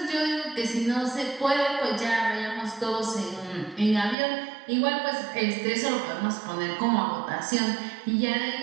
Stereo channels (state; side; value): drops out; left; at 4.2 s